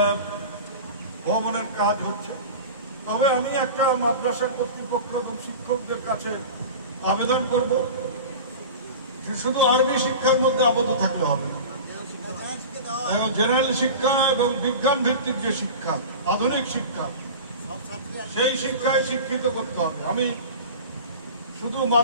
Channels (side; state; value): both; inverted; correlation -0.33